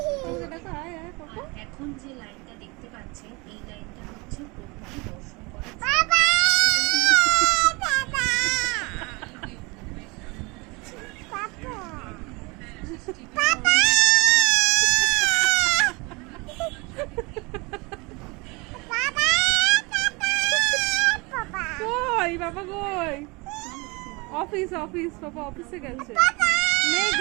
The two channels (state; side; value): quieter; left; 26.7 dB